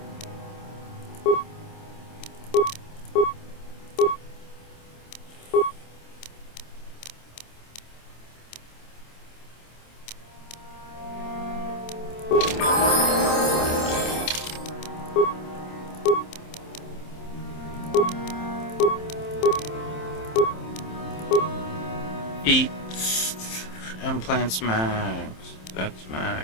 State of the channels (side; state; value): right; late; 27 ms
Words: Eat implants max. That's